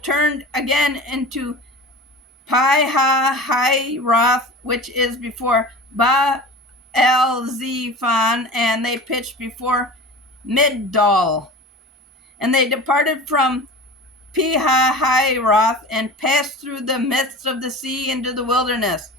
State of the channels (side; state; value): both; normal; correlation 0.35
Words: turned again into Pi-hahiroth, which is before Baal-zephon, and they pitched before Migdol. And they departed from Pi-hahiroth and passed through the midst of the sea into the wilderness,